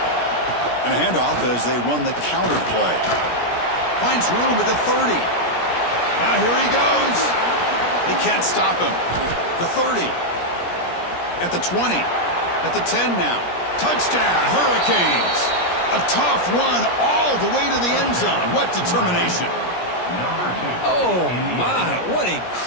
And a handoff as they run the counter play. Finds room at the 30. Now here he goes. They can't stop him. The 30. At the 20. At the 10 now. Touchdown, Hurricanes. A tough run all the way to the end zone. What determination. Oh, my. What a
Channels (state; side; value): late; right; 17 ms